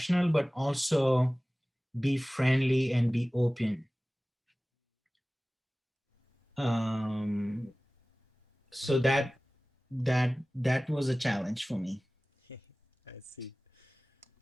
but also be friendly and be open. Um, so Okay. that was a challenge for me. I see.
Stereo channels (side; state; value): both; normal; correlation 0.98